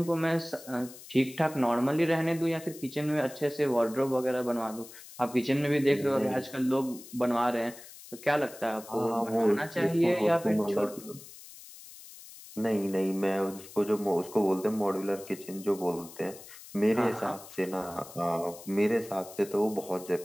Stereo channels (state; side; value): noise; left; hiss, 17 dB below the sound